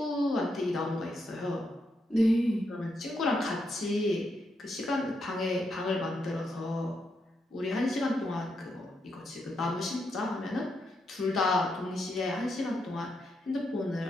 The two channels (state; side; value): normal; both; correlation 0.81